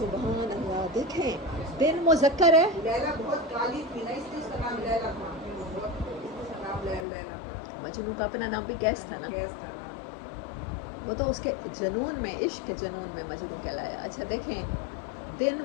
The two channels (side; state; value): right; drops out; at 7.1 s